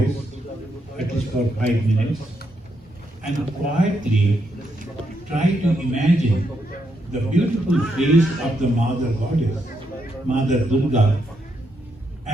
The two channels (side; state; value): both; normal; correlation 0.80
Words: at least for 5 minutes, and quietly try to imagine the beautiful face of the Mother Goddess, Mother Durga,